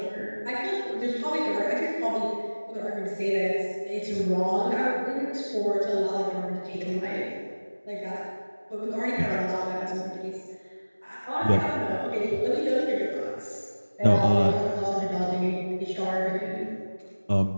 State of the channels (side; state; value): both; inverted; correlation -1.00